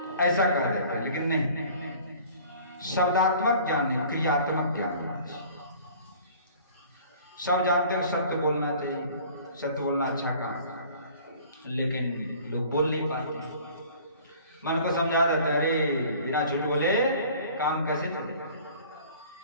ऐसा कर देते हैं। लेकिन नहीं, शब्दात्मक ज्ञान नहीं, क्रियात्मक ज्ञान। सब जानते हैं सत्य बोलना चाहिए, सत्य बोलना अच्छा काम, लेकिन लोग बोल नहीं पाते। मन को समझा देते, अरे बिना झूठ बोले काम कैसे चलेगा।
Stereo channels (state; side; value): inverted; both; correlation -0.49